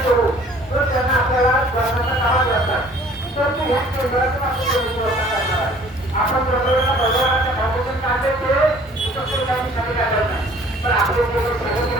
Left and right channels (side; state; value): both; normal; correlation 0.53